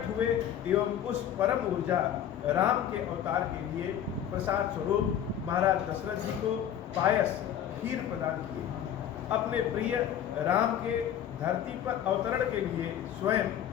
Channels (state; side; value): quieter; right; 10.0 dB